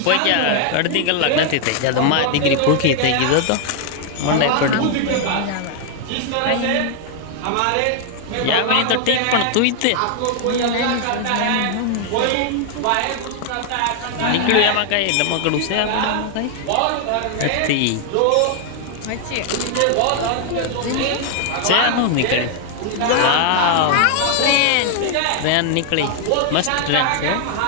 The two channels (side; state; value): both; different; correlation 0.00